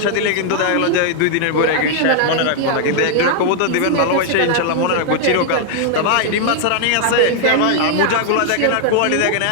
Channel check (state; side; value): different; both; correlation 0.00